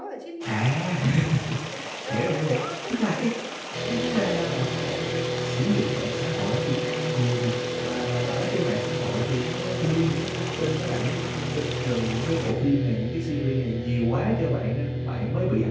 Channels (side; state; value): both; identical; correlation 1.00